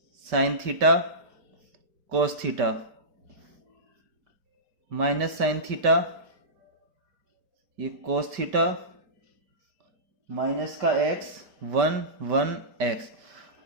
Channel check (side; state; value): left; late; 5.1 ms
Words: sine theta cos theta minus sine theta, ये कोस थीटा माइनस का एक्स 1 1 एक्स।